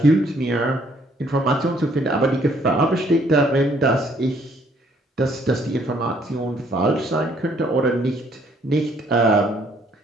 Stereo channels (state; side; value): normal; both; correlation 0.65